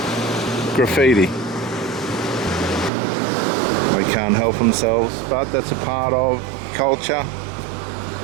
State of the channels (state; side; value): drops out; left; at 2.9 s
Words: graffiti. They can't help themselves, but that's a part of culture.